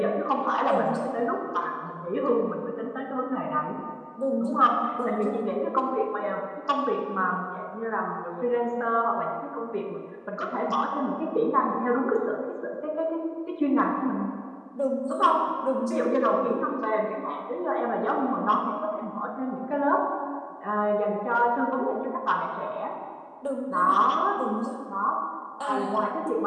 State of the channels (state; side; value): identical; both; correlation 1.00